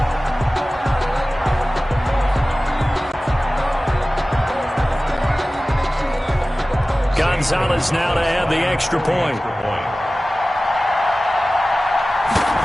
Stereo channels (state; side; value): normal; both; correlation 0.97